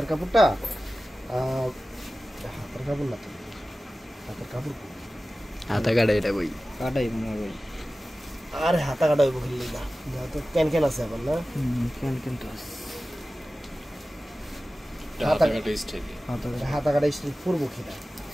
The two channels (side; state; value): both; normal; correlation 0.96